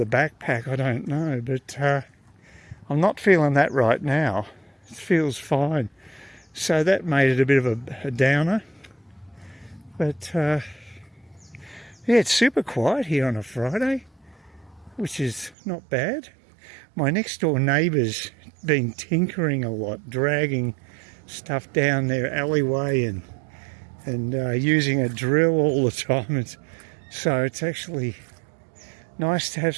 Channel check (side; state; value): left; drops out; at 15.6 s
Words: backpack, I don't know, but I'm not feeling that right now. It feels fine. So that made it a bit of a downer. But yeah, it's super quiet here on a Friday, which is not bad. My next door neighbour's been tinkering a lot, dragging stuff down their alleyway and using a drill all the time. So it's actually nice to have